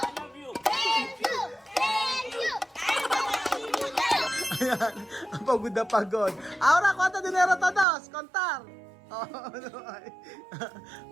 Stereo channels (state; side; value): drops out; left; at 7.9 s